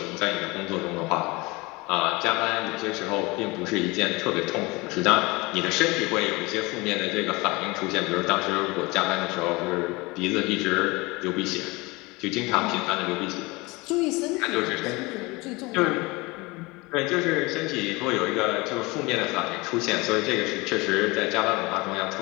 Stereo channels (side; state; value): right; quieter; 24.0 dB